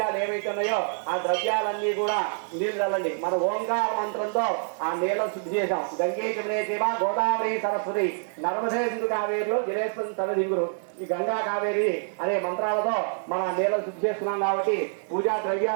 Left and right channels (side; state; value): left; silent; 61 dB below the other